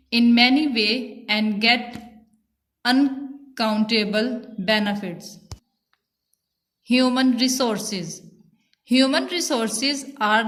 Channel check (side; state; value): both; identical; correlation 1.00